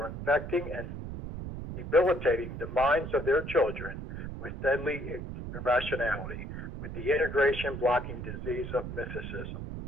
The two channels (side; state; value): right; noise; rumble, 7 dB below the sound